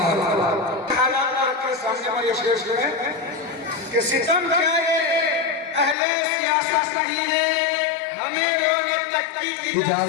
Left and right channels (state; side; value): drops out; right; at 6.0 s